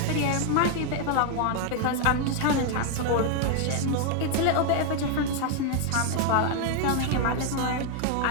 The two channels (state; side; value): different; both; correlation 0.00